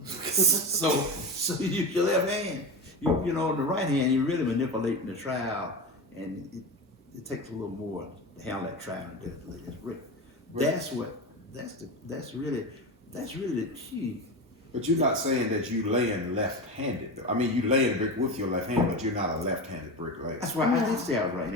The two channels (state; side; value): normal; both; correlation 0.23